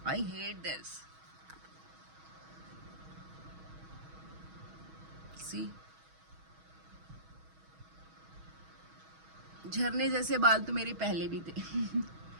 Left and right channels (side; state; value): left; late; 6.3 ms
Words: I hate this. सी झरने जैसे बाल तो मेरे पहले भी थे।